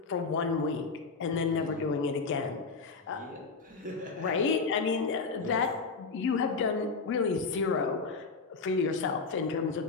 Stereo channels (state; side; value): quieter; right; 4.5 dB